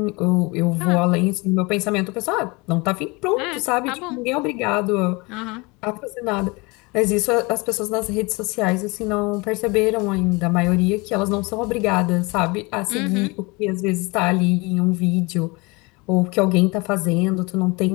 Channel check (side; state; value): right; quieter; 26.4 dB